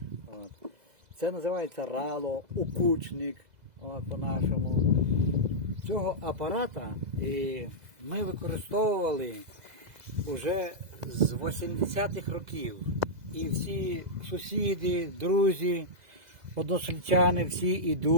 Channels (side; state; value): left; late; 2.0 ms